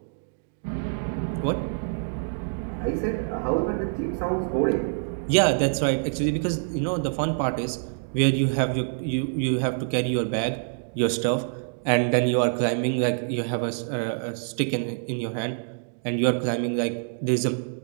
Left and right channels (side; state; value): left; silent; digital silence